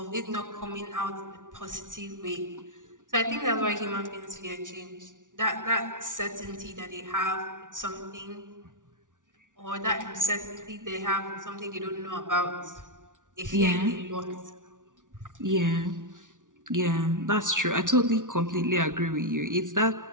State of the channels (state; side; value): late; left; 0.88 ms